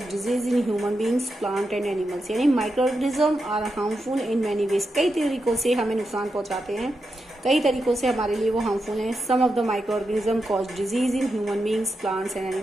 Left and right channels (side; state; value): both; normal; correlation 0.87